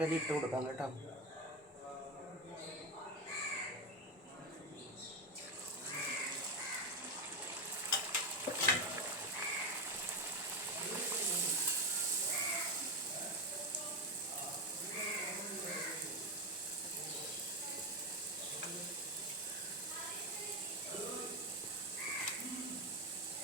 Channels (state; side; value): normal; both; correlation 0.13